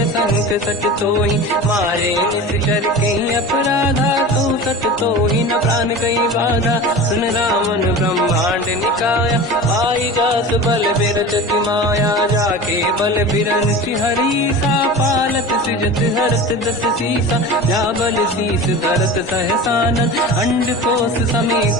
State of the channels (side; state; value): both; normal; correlation 0.33